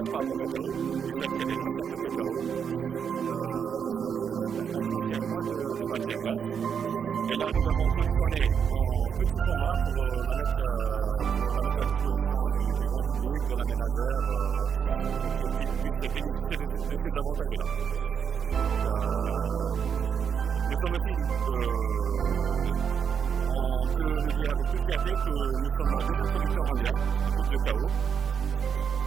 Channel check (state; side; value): quieter; left; 7.3 dB